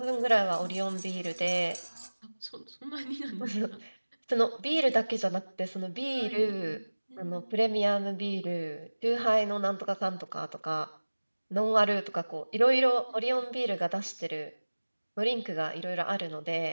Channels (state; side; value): inverted; both; correlation -1.00